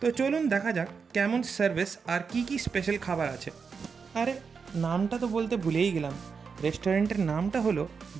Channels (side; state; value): left; quieter; 5.6 dB